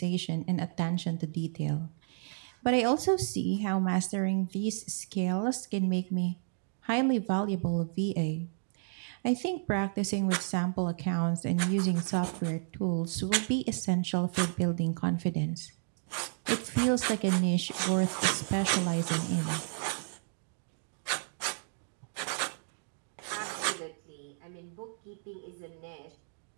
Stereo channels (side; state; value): left; silent; digital silence